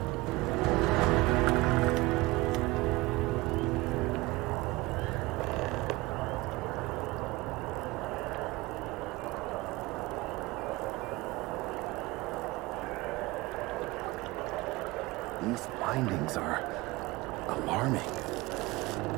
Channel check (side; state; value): left; quieter; 21.4 dB